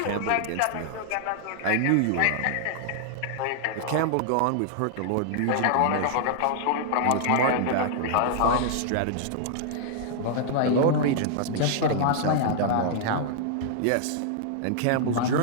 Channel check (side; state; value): both; different; correlation -0.01